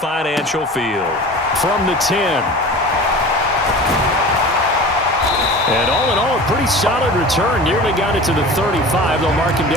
Field. From the 10. And all in all, a pretty solid return. Nearly got it to the 35. They'll mark him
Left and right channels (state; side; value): normal; both; correlation 0.37